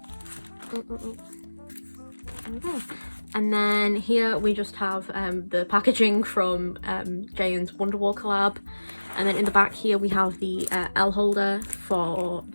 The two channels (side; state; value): both; inverted; correlation -1.00